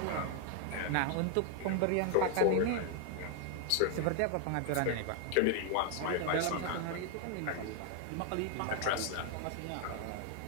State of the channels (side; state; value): both; different; correlation 0.00